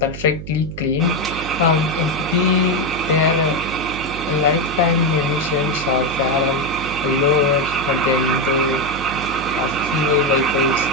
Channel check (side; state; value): right; noise; hum, 11 dB below the sound